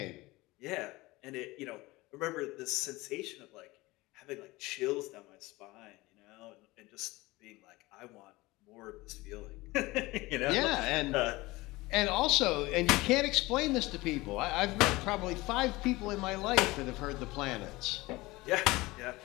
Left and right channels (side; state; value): right; quieter; 20.9 dB